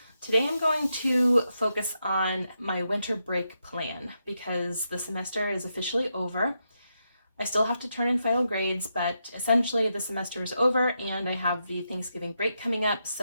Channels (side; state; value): both; inverted; correlation -0.84